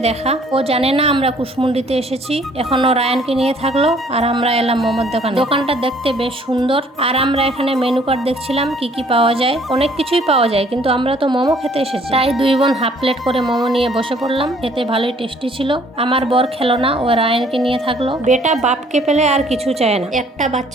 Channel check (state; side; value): normal; both; correlation 0.60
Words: ও জানে না আমরা কুশমন্ডিতে এসেছি। এখনো রায়ানকে নিয়ে থাকলো আর আমরা এলাম মোমোর দোকানে। দোকানটা দেখতে বেশ সুন্দর। আর আমরা এখানে মেনু কার্ড দেখছিলাম কি কি পাওয়া যায়। অনেক কিছুই পাওয়া যায়, কিন্তু আমরা তো মোমো খেতে এসেছি, তাই দুই বোন হাফ প্লেট করে মোমো নিয়ে বসে পড়লাম। খেতে ভালোই টেস্টি ছিল। আমার বর খেলো না, ও রায়ানকে নিয়ে থাকলো। বেটা বাপকে পেলে আর কিছু চায় না। একটা